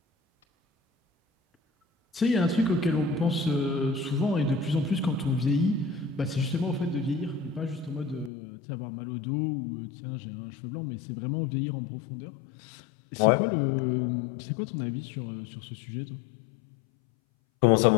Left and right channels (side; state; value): right; drops out; at 8.3 s